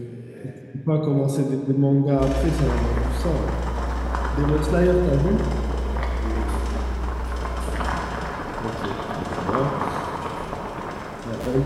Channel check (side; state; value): both; identical; correlation 1.00